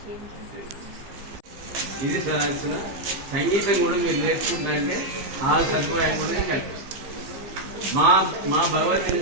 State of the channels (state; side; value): late; left; 15 ms